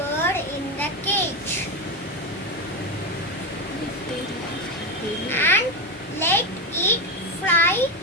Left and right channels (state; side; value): normal; both; correlation 0.13